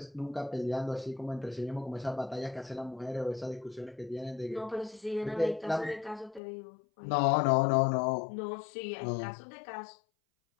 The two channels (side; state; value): right; drops out; at 6.4 s